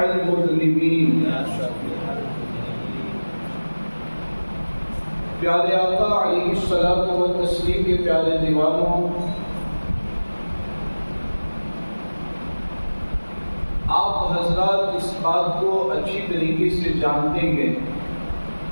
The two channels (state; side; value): inverted; both; correlation -1.00